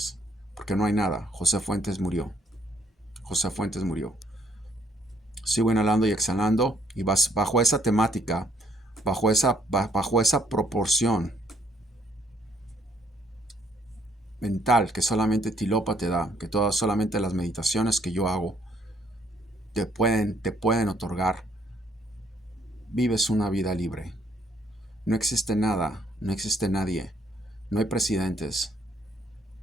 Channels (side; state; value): both; normal; correlation 0.68